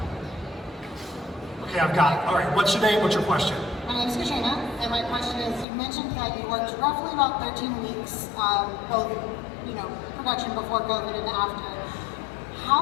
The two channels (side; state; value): right; drops out; at 5.7 s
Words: Okay, I've got it. All right, what's your name, what's your question? My name is Katrina, and my question is, you mentioned that you worked roughly about 13 weeks, both, you know, production before COVID and after.